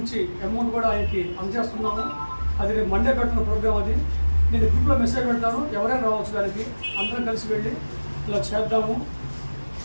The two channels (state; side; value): inverted; both; correlation -1.00